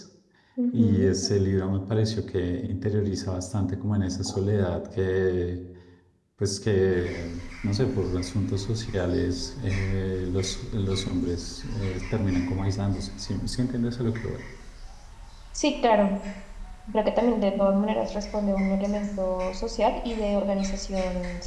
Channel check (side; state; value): both; identical; correlation 1.00